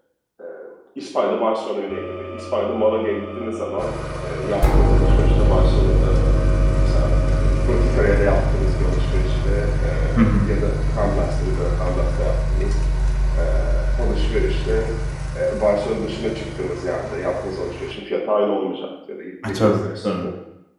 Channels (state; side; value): identical; both; correlation 1.00